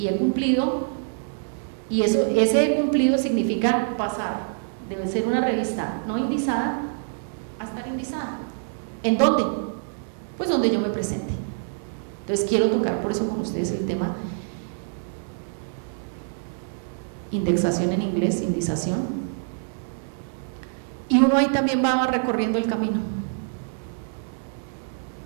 he cumplido, y ese he cumplido significa pasar de ser una revista no indizada a estar indizada. ¿En dónde? Pues donde yo me presente. Entonces quiero tocar por eso con ustedes el tema indexación en inglés, indización, y uno ahí también va recorriendo el camino.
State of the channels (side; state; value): left; silent; 60 dB below the other